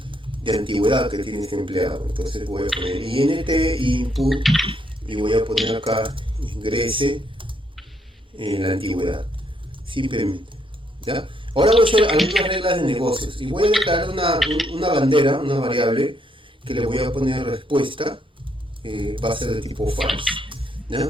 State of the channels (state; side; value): normal; both; correlation 0.73